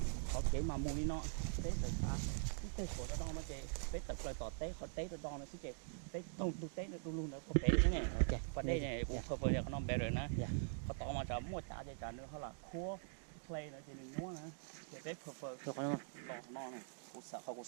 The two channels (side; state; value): left; silent; digital silence